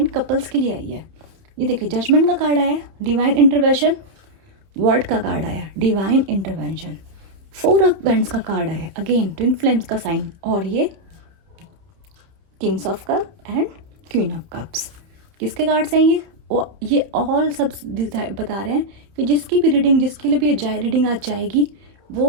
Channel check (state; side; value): late; left; 30 ms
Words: कपल्स के लिए आई है। ये देखिए, जजमेंट का कार्ड आया, डिवाइन इंटरवेंशन, वर्ड का कार्ड आया, डिवाइन इंटरवेंशन, 4 ऑफ वेंट्स का कार्ड आया, अगेन ट्विन फ्लेम्स का साइन, और ये Kings of cup and queen of cups. किसके कार्ड्स हैं ये ऑल सब बता रहे हैं कि जिसकी भी रीडिंग, जिसके लिए भी ये रीडिंग आज जाएगी,